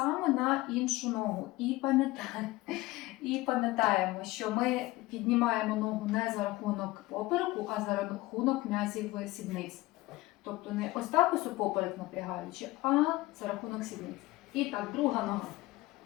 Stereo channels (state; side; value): quieter; right; 19.5 dB